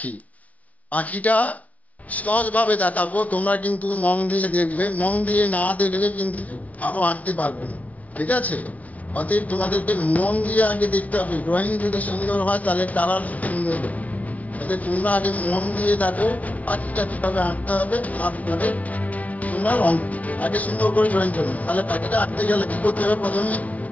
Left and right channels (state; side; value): late; right; 0.071 ms